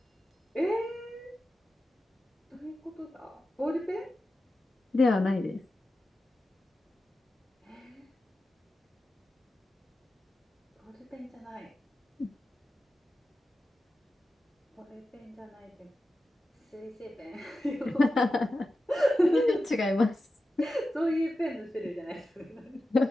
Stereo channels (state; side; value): normal; both; correlation 0.92